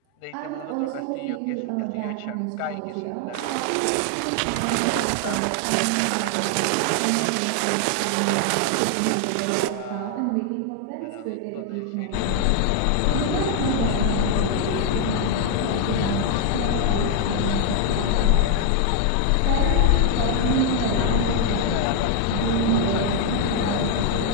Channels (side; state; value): both; different; correlation 0.00